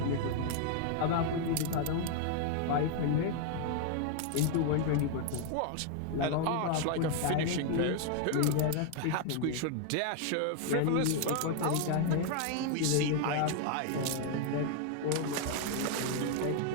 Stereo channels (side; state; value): both; different; correlation 0.00